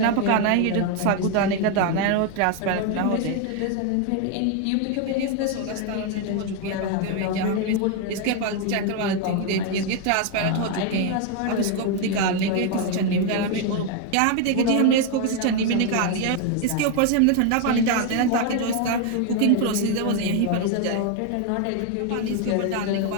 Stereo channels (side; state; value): both; different; correlation 0.01